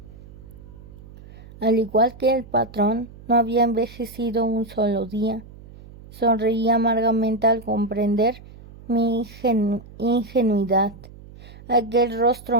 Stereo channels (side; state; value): right; noise; hum, 19 dB below the sound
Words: Al igual que el patrón, no había envejecido un solo día. Sonreí amargamente al comprender mi ingenuidad. Aquel